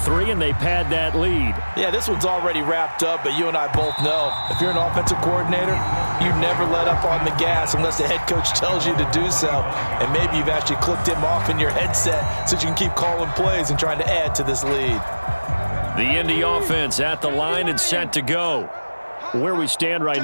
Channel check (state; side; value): inverted; both; correlation -1.00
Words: and they pad that lead. Yeah, this one's already wrapped up, but you and I both know if you're an offensive coordinator, you never let up on the gas unless the head coach tells you to do so. And maybe you've actually clicked him off in your headset so you can keep calling plays and trying to add to this lead. The Indy offense at the line and set to go. Where we stand right